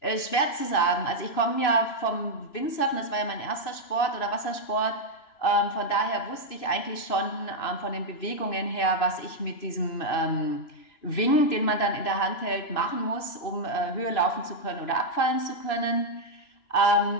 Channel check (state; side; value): late; right; 2.9 ms